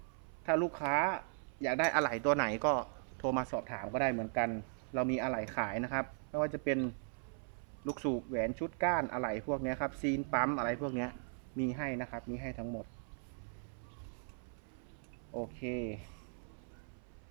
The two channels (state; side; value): silent; left; 52 dB below the other